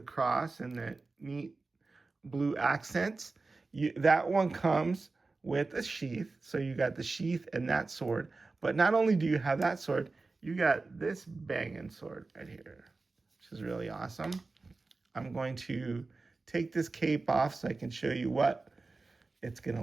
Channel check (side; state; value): left; quieter; 3.7 dB